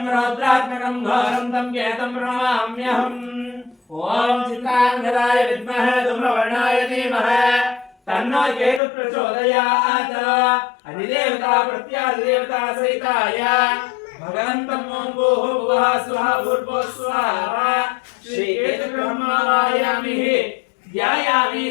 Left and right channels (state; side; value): drops out; right; at 8.8 s